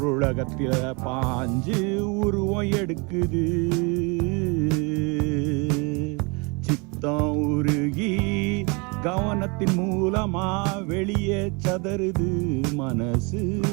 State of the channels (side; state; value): left; quieter; 30.3 dB